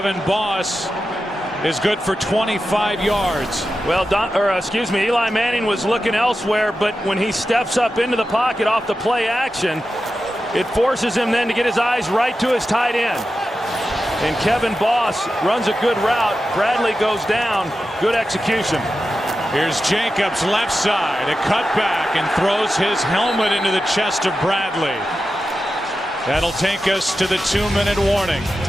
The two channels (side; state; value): both; normal; correlation 0.91